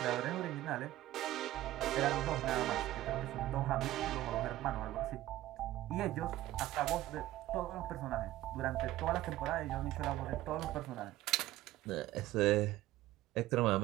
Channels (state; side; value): quieter; left; 15.1 dB